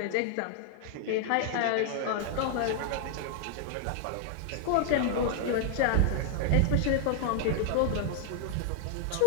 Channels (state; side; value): different; both; correlation 0.00